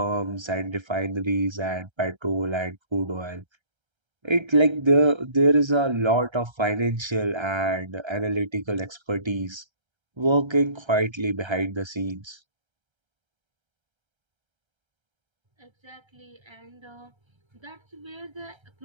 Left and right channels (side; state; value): left; late; 1.3 ms